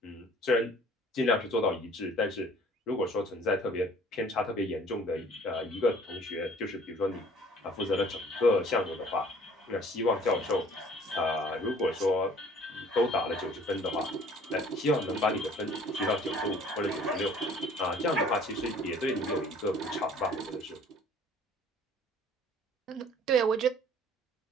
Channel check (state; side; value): normal; both; correlation 0.53